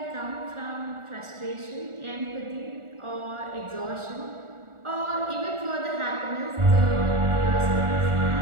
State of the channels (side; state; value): left; late; 1.4 ms